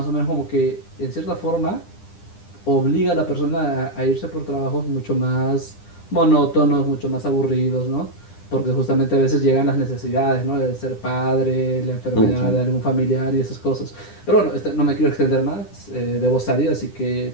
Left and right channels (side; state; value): right; late; 9.9 ms